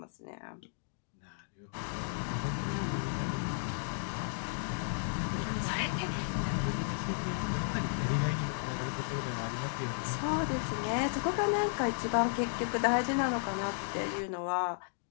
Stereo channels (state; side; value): silent; right; digital silence